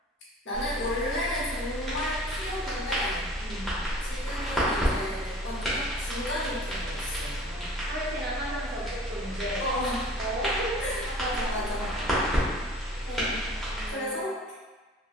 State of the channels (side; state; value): both; normal; correlation 0.46